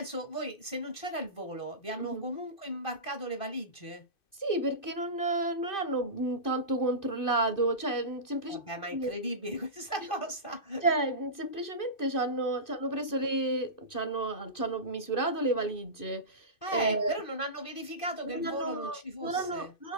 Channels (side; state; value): right; late; 2.5 ms